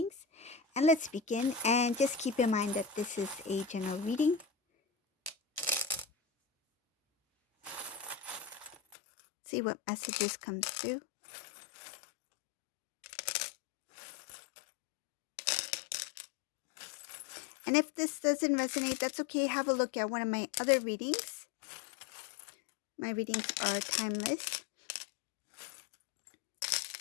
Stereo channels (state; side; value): drops out; right; at 9.0 s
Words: And let's begin. And just keep in mind that this is a general reading. See what messages come through. And if this doesn't resonate, that's okay. Have a look at one of my other readings. My readings are timeless.